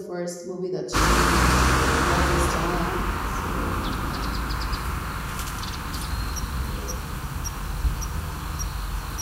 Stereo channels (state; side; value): identical; both; correlation 1.00